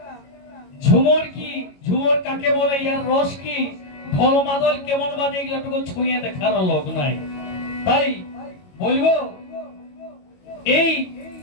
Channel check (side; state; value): right; late; 22 ms